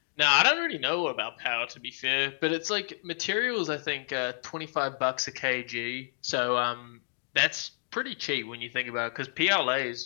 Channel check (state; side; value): silent; right; digital silence